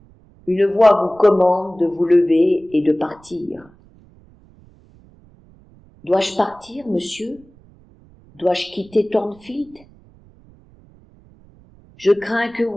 une voix vous commande de vous lever et de partir. Dois-je partir, monsieur? Dois-je quitter Thornfield? Je crains que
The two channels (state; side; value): noise; right; rumble, 27 dB below the sound